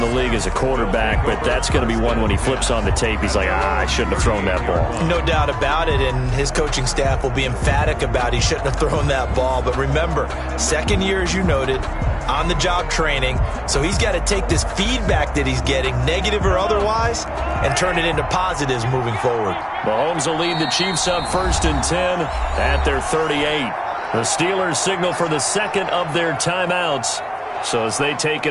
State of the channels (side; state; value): both; identical; correlation 1.00